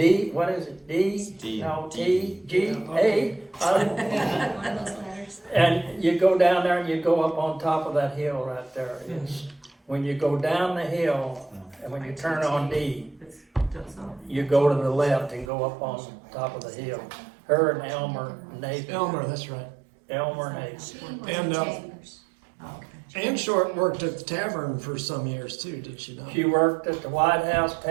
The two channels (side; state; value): left; drops out; at 15.5 s